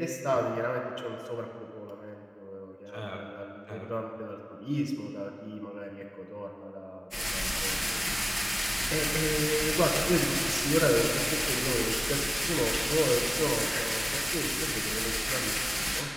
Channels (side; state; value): both; identical; correlation 1.00